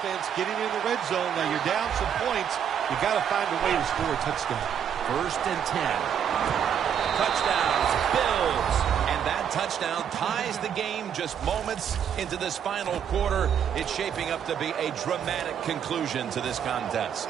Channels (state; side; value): quieter; left; 8.5 dB